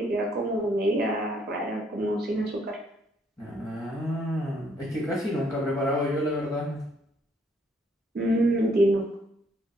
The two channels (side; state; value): both; normal; correlation 0.68